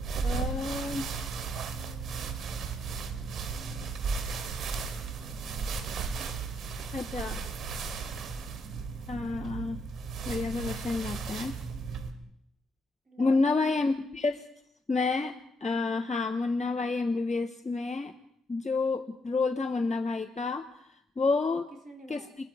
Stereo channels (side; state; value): both; normal; correlation 0.77